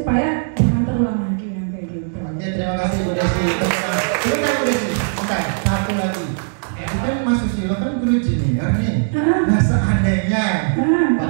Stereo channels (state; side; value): silent; left; digital silence